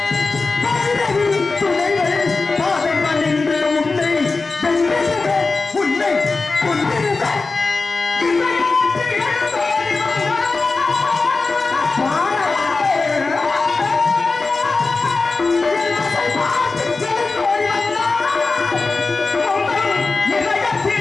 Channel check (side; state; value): right; quieter; 3.9 dB